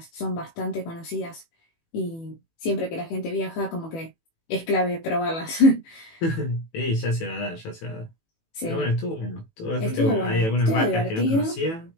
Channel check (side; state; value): right; late; 18 ms